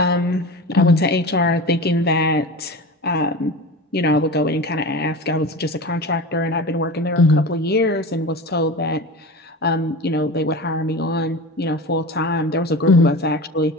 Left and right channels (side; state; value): both; normal; correlation 0.30